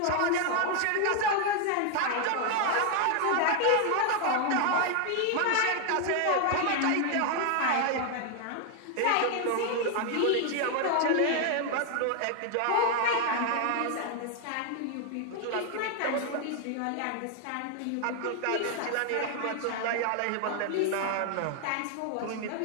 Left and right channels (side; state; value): both; different; correlation 0.00